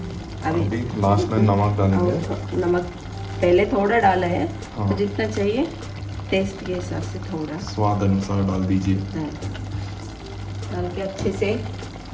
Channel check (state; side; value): identical; both; correlation 1.00